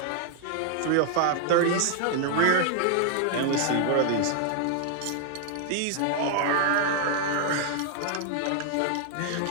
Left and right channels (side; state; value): both; different; correlation 0.00